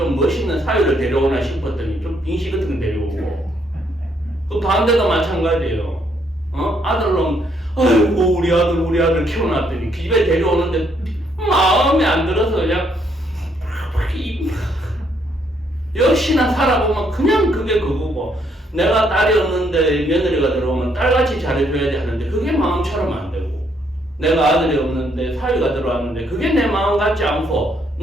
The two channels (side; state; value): both; normal; correlation 0.71